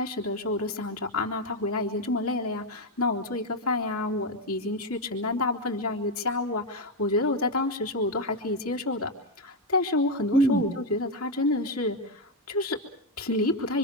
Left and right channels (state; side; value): normal; both; correlation 0.05